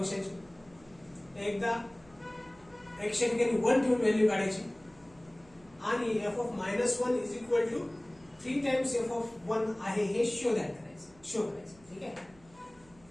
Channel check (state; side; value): noise; right; hum, 27 dB below the sound